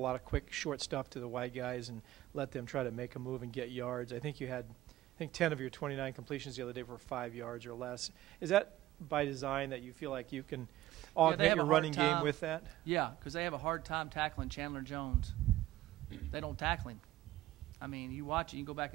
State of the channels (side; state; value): left; quieter; 15.4 dB